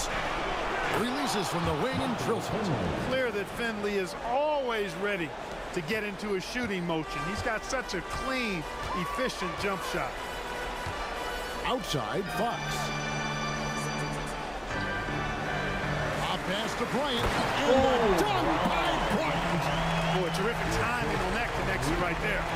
Releases from the wing and drills it. Clear that Finley is always ready to get into a shooting motion. He's got such a clean, efficient jump shot. Outside, Fox. A pass to Bryant. And done by Bryant. Boy, terrific timing on that connection right there.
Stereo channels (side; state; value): both; identical; correlation 1.00